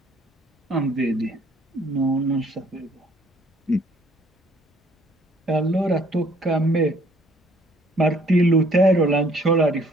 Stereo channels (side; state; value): both; normal; correlation 0.61